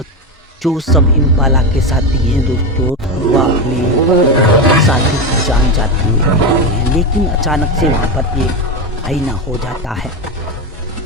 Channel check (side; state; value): both; normal; correlation 0.15